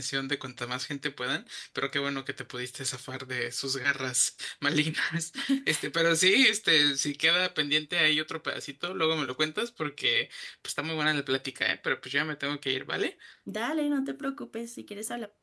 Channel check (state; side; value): identical; both; correlation 1.00